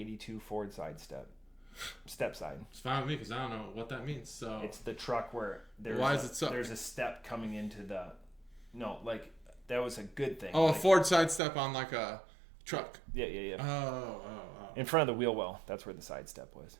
Ford step side. It's fine with me because I don't know what that means. So it's the truck where there's a step coming into the. No, like that was a good thing. Oh, like, a Ford side step on like a truck. Yeah. Oh. In front of the wheel well. That's where the side step was.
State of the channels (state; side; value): drops out; left; at 11.4 s